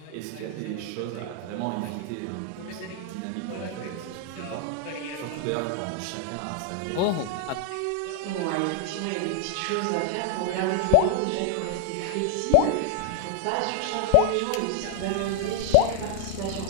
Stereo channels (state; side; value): different; both; correlation 0.00